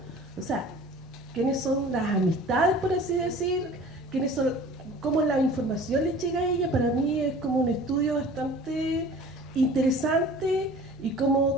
o sea, quiénes son las amistades, por así decir, quiénes son, cómo la información les llega a ella? Para mí es como un estudio bastante interesante, y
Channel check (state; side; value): normal; both; correlation 0.44